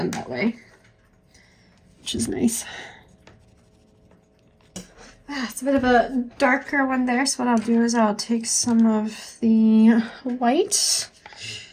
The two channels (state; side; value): identical; both; correlation 1.00